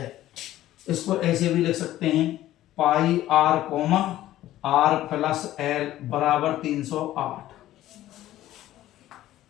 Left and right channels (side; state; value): right; quieter; 14.2 dB